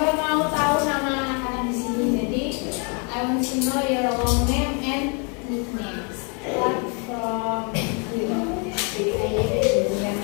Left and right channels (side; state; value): right; quieter; 36.2 dB